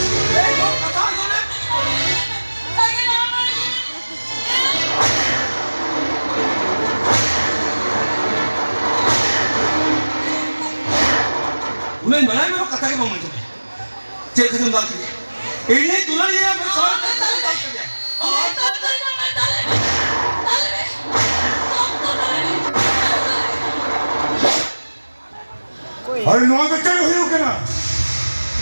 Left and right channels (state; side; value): inverted; both; correlation -1.00